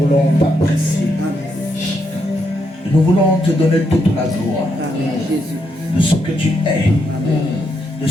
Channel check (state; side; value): normal; both; correlation 0.79